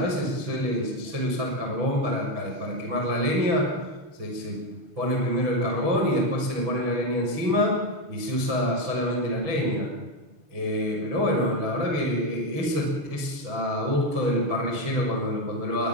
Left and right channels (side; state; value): left; late; 6.1 ms